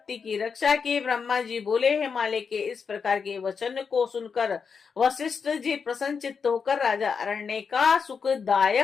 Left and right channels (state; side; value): quieter; right; 5.9 dB